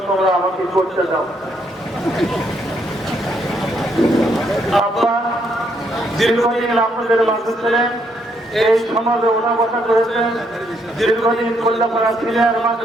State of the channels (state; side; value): normal; both; correlation 0.73